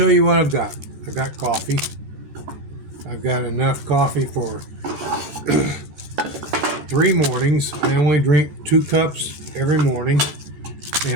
you what I've got. I've got coffee. I've got enough coffee for 3 mornings. I only drink 2 cups every morning,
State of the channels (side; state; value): left; late; 14 ms